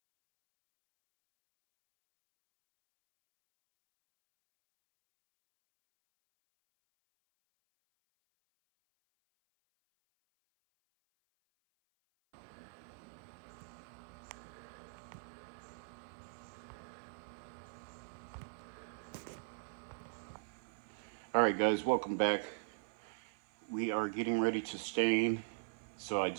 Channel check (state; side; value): silent; left; 51 dB below the other